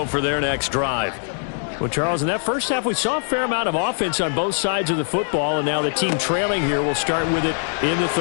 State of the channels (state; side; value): silent; right; digital silence